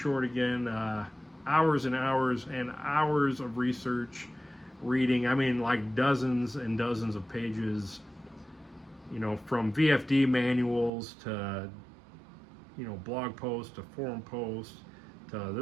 again, hours and hours and hours of research, reading, like dozens and dozens of pages, from VFD manuals to, blog posts to forum posts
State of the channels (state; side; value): drops out; left; at 10.9 s